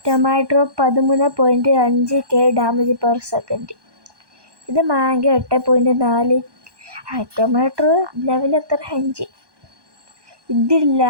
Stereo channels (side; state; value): left; late; 1.2 ms